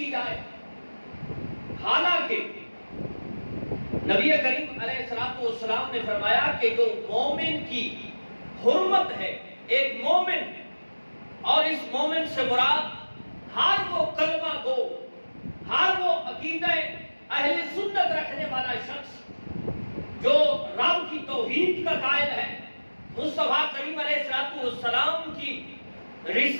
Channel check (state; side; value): inverted; both; correlation -1.00